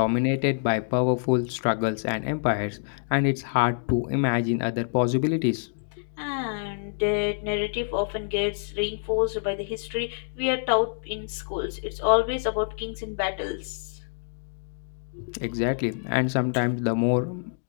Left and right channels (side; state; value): right; silent; digital silence